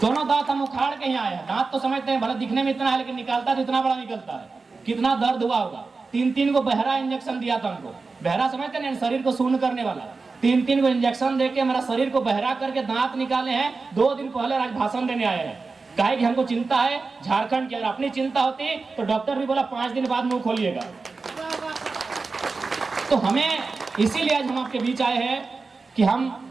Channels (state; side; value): quieter; left; 4.1 dB